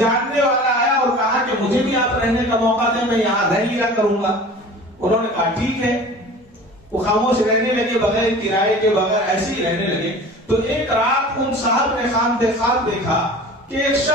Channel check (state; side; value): normal; both; correlation 0.41